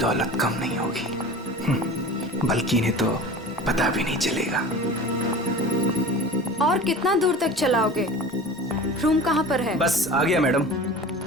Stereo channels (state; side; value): normal; both; correlation 0.37